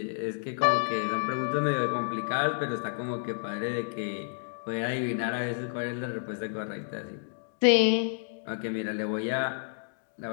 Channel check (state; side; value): silent; right; digital silence